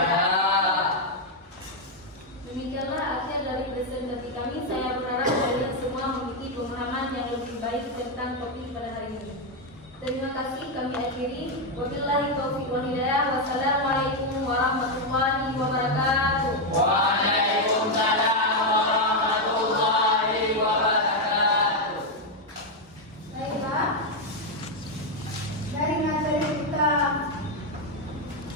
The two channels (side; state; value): both; normal; correlation 0.03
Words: Demikianlah akhir dari presentasi kami. Saya berharap kalian semua memiliki pemahaman yang lebih baik tentang topik pada hari ini. Terima kasih, kami akhiri. Wabillahi taufiq wal hidayah. Wassalamualaikum warahmatullahi wabarakatuh. Waalaikumsalam warahmatullahi wabarakatuh. Baiklah, dari materi kita